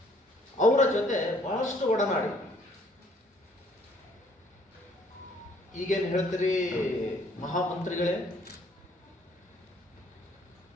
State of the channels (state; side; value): normal; both; correlation 0.61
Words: ಅವರ ಜೊತೆ ಬಹಳಷ್ಟು ಒಡನಾಡಿ. ಈಗೇನು ಹೇಳ್ತೀರಿ ಮಹಾಮಂತ್ರಿಗಳೇ?